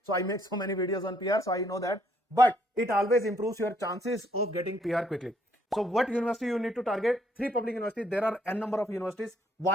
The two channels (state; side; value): normal; both; correlation 0.68